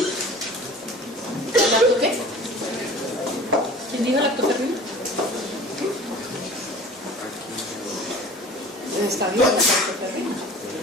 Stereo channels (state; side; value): normal; both; correlation 0.43